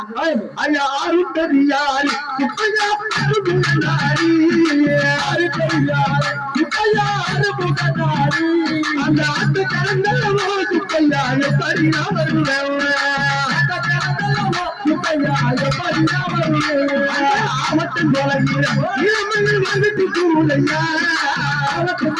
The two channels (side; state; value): both; identical; correlation 1.00